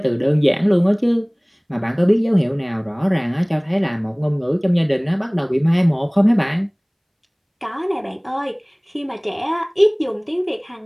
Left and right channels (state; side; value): identical; both; correlation 1.00